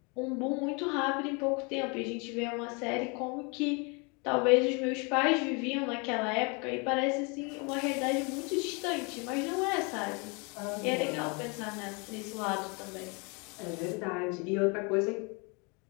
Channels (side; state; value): right; quieter; 31.5 dB